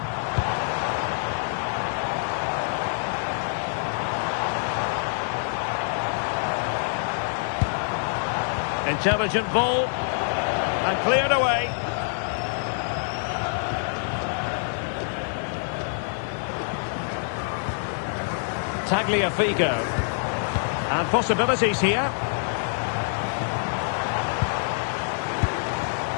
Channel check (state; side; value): silent; right; digital silence